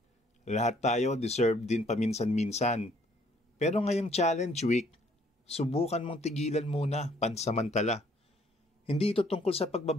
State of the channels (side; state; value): both; normal; correlation 0.63